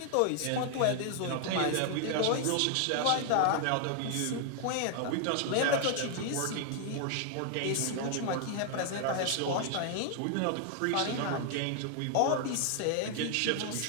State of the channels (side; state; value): both; different; correlation 0.00